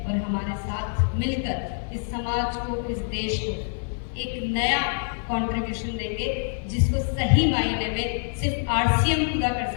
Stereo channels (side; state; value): right; silent; 60 dB below the other